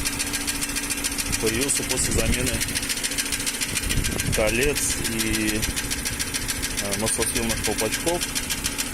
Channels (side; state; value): both; identical; correlation 1.00